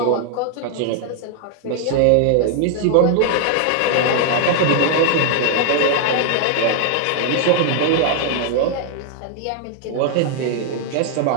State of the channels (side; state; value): both; different; correlation 0.00